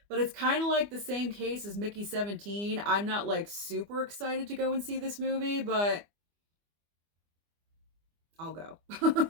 But it's kind of like the same case as Mickey 17. I'm not like super excited to go and see this movie, but I'll go.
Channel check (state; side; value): late; left; 24 ms